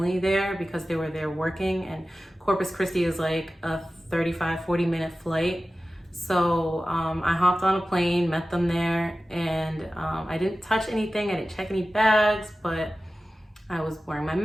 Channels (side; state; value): both; normal; correlation 0.95